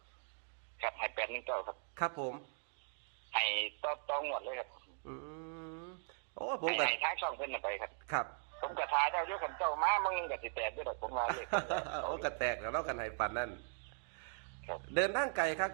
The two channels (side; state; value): left; silent; 51 dB below the other